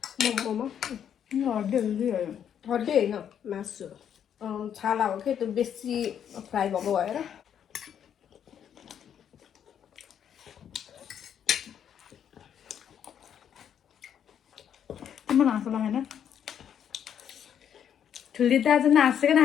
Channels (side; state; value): right; quieter; 8.9 dB